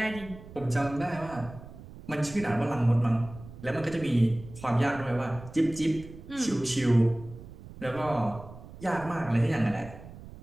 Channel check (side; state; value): right; noise; rumble, 16 dB below the sound